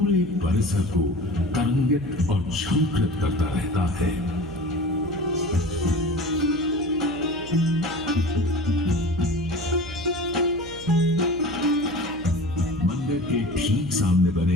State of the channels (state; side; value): noise; right; hum, 17 dB below the sound